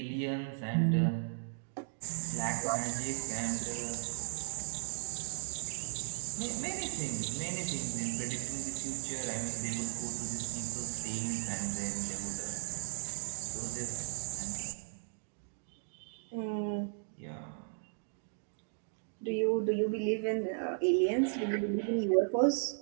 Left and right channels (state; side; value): silent; left; digital silence